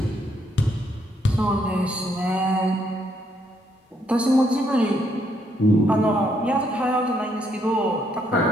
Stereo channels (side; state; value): both; normal; correlation 0.73